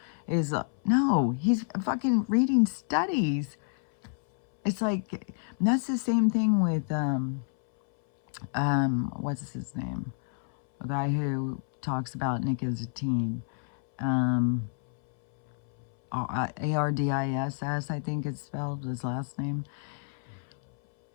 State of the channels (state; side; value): silent; right; 59 dB below the other